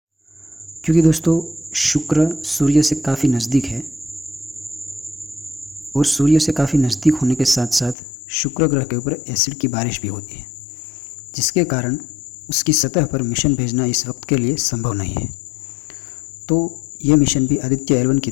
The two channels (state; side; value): drops out; right; at 8.0 s